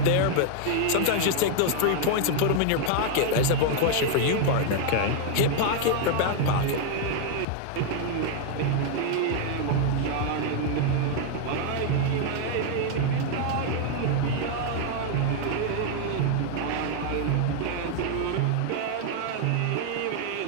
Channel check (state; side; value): different; both; correlation 0.00